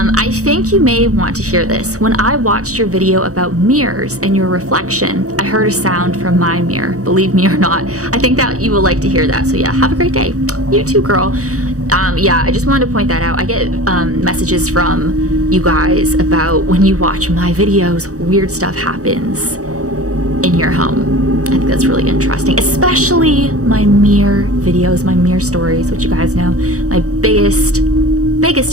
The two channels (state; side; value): late; left; 0.66 ms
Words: I think you may want to hear this. When I watched your video about mirrors and your reflection, I heard a sound from my mirror. Believe me or not, I think that you will like to hear that. So yeah, have a great day. You too, girl. Yeah, I just wanted to point that out. I get messages from you guys about when you watch my videos, weird stuff happens in your home. I think that's really interesting, especially my mirror videos, my mirror stories, which you guys know, my biggest